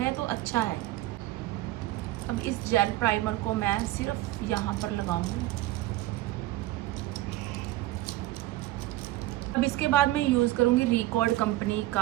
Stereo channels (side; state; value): left; quieter; 16.8 dB